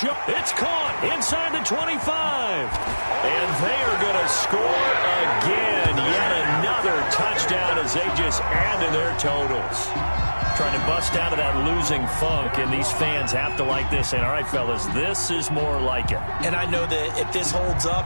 It's caught inside the 25. And they are going to score again. Yet another touchdown as they just add to their totals. Trying to bust out of that losing funk, and these fans have to like this. And, all right, fellas, this is more like it. And I know that if this holds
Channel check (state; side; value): inverted; both; correlation -1.00